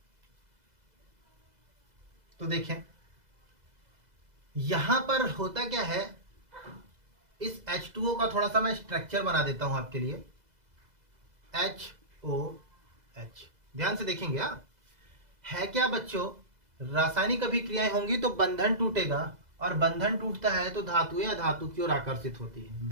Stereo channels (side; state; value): left; late; 2.0 ms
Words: तो देखें यहां पर होता क्या है, इस H2O का थोड़ा सा मैं स्ट्रक्चर बना देता हूं आपके लिए। HOH ध्यान से देखेंगे। है क्या बच्चों, रासायनिक अभिक्रियाएं होंगी तो बंधन टूटेगा, और बंधन टूटता है तो धातुएं अधातु की ओर आकर्षित होती है,